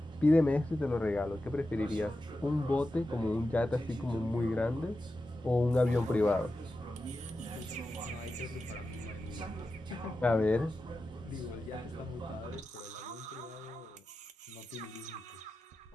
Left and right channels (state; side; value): normal; both; correlation 0.92